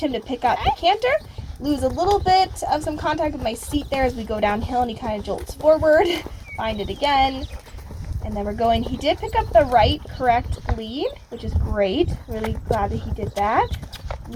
to pick up the canter. Lose a little bit of some contact with my seat there as we go downhill, and he kind of jolts forward. Find it again. And then we're going. He did pick up the right correct lead, which is great. Really glad that he did that.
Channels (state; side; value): identical; both; correlation 1.00